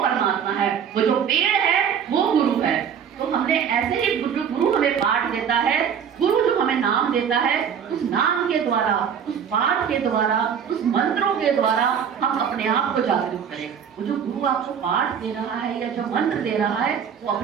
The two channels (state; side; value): quieter; left; 7.8 dB